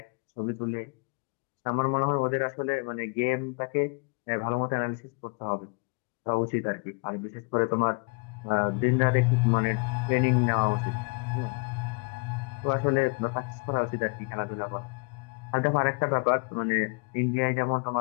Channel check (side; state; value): right; quieter; 34.0 dB